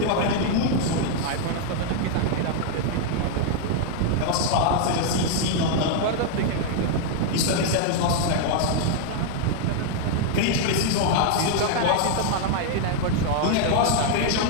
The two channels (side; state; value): both; different; correlation 0.00